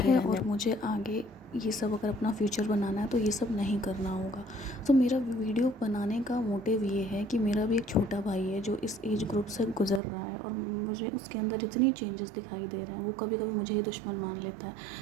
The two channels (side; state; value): left; drops out; at 10.0 s